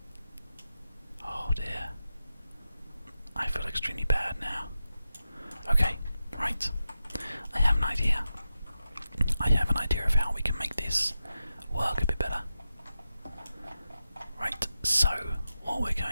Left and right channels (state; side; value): inverted; both; correlation -0.91